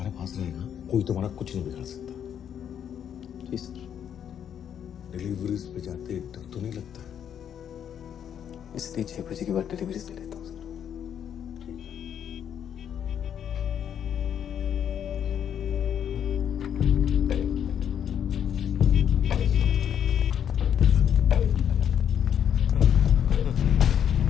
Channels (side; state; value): right; quieter; 8.9 dB